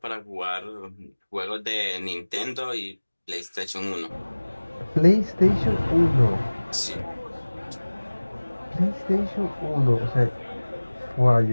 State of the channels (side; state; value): both; inverted; correlation -1.00